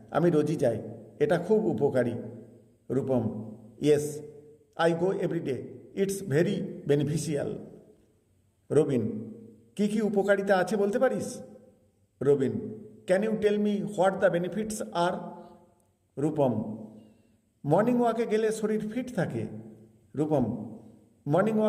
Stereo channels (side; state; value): both; identical; correlation 1.00